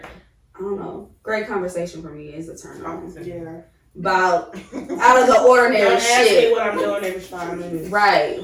I don't know. great conversation for me is a turn on. Yeah. About out of the ordinary Don't ask me shit. what I'm doing every 5 minutes. Right.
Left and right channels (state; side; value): identical; both; correlation 1.00